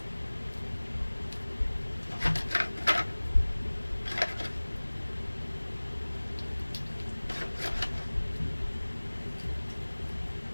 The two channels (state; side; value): inverted; both; correlation -1.00